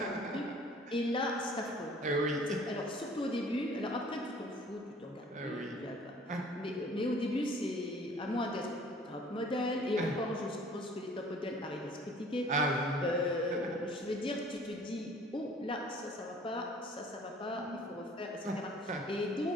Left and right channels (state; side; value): normal; both; correlation 0.52